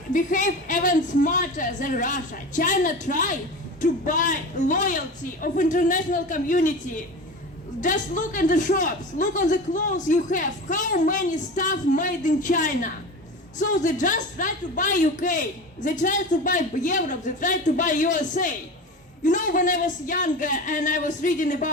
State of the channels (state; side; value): normal; both; correlation 0.30